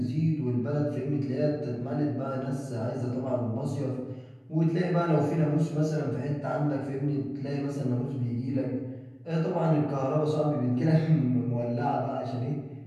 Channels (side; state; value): both; identical; correlation 1.00